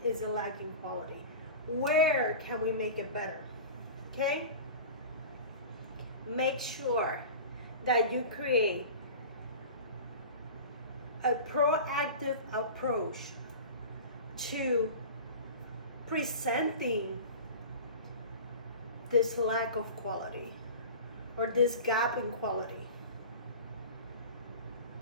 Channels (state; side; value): inverted; both; correlation -0.34